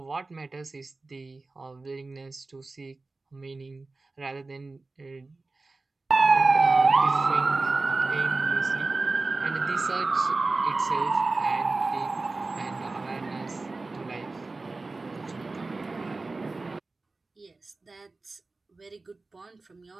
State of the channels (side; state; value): left; quieter; 3.5 dB